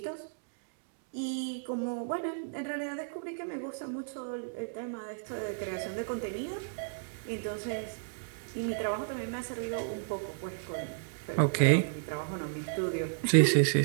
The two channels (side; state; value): left; silent; digital silence